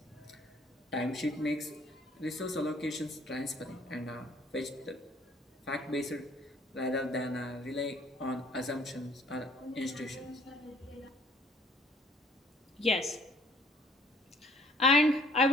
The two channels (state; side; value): normal; both; correlation 0.60